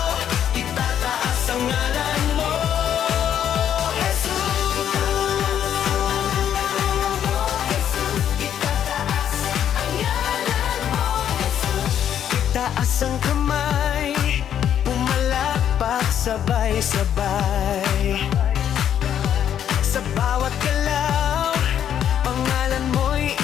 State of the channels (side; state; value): right; quieter; 9.6 dB